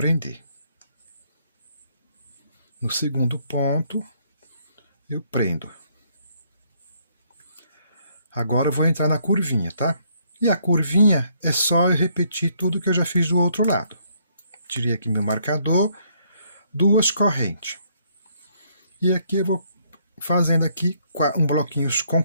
No segundo ponto, eu prendo. Agora eu vou entrar na curvinha, tá? E a curvinha é só eu repetir tudo que eu já fiz do outro lado. Tirei aqui meu marcador, 2 correntes. E aqui eu vou fazendo aqui um bloquinho com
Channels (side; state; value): both; inverted; correlation -0.69